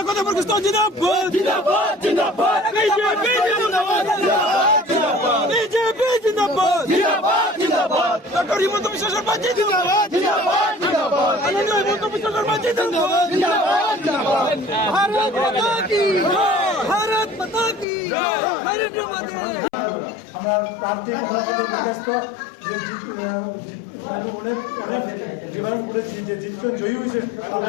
ডক্টর হিমন্ত বিশ্ব শর্মা জিন্দাবাদ, হিমন্ত বিশ্ব শর্মা জিন্দাবাদ, ভারত মাতা কি জয়, ভারত মাতা কি জয়, নরেন্দ্র মোদি। আমরা প্রার্থী ব্যস্ত যে অনেক জিতবেন, জয়ী হয়েছে, তাহলে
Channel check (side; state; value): right; drops out; at 17.9 s